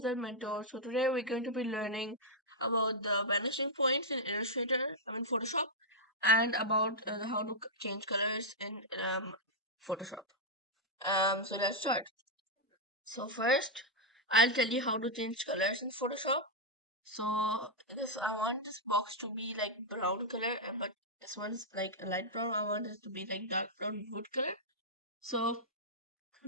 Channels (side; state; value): both; normal; correlation -0.06